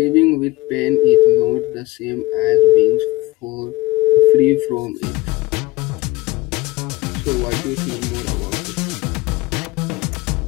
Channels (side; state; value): right; quieter; 19.6 dB